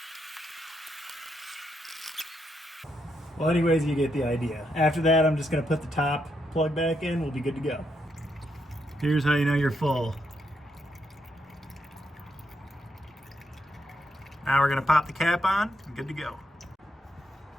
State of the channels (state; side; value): normal; both; correlation 0.79